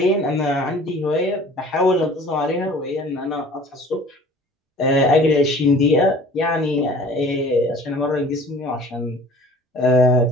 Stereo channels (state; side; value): normal; both; correlation 0.48